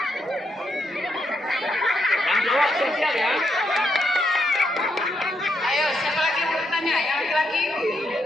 Yang jawab sosial ya. Ayo, siapa lagi yang bertanya? Yang laki-laki?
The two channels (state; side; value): normal; both; correlation 0.79